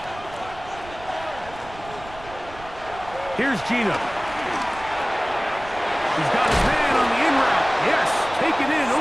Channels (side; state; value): right; noise; rumble, 17 dB below the sound